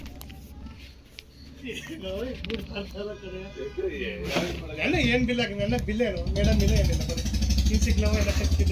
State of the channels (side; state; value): both; identical; correlation 1.00